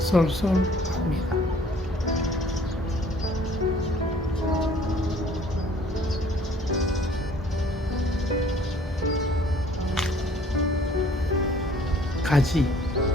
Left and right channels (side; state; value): both; normal; correlation 0.56